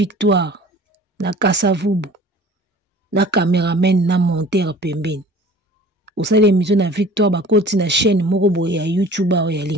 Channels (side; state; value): both; normal; correlation 0.46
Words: na Kasavubu, na caméraman na monteur pembeni. Osa l'émission na Victoire ba koti na chaîne moko ya YouTuber ou ya